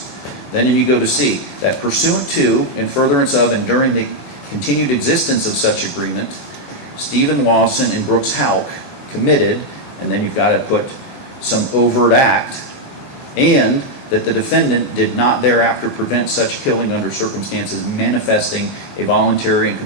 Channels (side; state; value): right; late; 21 ms